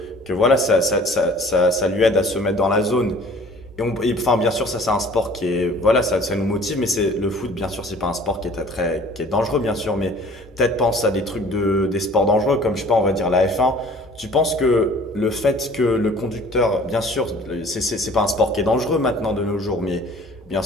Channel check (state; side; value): noise; right; hum, 24 dB below the sound